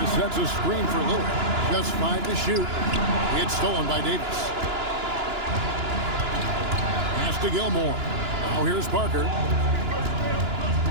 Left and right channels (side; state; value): left; late; 2.9 ms